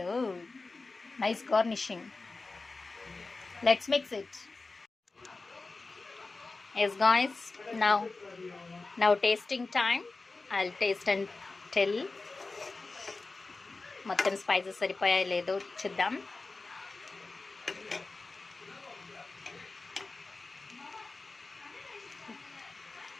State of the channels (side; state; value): right; quieter; 3.6 dB